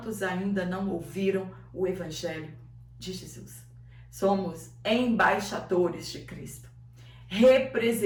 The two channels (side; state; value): both; identical; correlation 1.00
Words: ainda não ouviram o Evangelho de Jesus. Somos embaixadores de Cristo,